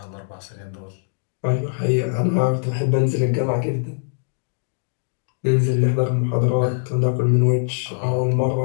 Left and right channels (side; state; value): right; silent; digital silence